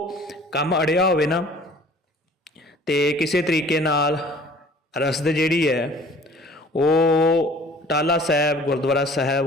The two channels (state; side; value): normal; both; correlation 0.50